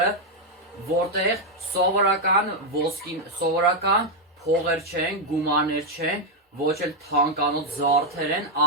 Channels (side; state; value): both; normal; correlation 0.00